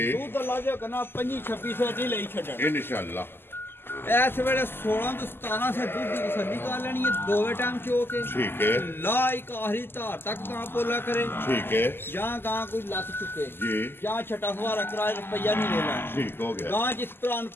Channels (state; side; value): late; right; 0.11 ms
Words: ਤੂੰ ਤਾਂ ਲਾ ਜਾ ਕਨਾ 25 2600 ਦੀ ਲਈ ਛੱਡਣ ਇਨਸ਼ਾਅੱਲਾ ਇਸ ਵੇਲੇ 16 ਤੋਂ 17 ਸੇ ਦੁੱਧ ਦੀ ਤਸੱਲੀ ਕਰ ਲੈਣੀ ਹੈ ਦੋਵੇਂ ਟਾਈਮ ਚੋ ਕੇ ਠੀਕ ਹੈ ਲਾ ਇੱਕ ਆਖਰੀ ਧਾਰ ਤੱਕ ਕਾਂ ਪੋਲਾ ਕਰੇ ਠੀਕ ਹੈ ਜਾਂ ਗਾਂ ਕੋਈ ਲੱਤ ਚੁੱਕੇ ਜੀ ਜਾਂ ਛਟਾ ਫਵਾਰਾ ਕਰਾਏ ਰੁਪਈਆ ਨਹੀਂ ਲੈਣਾ ਠੀਕ ਹੋ ਗਿਆ ਗਾਂ ਜਿਸ ਭਰਾ ਨੂੰ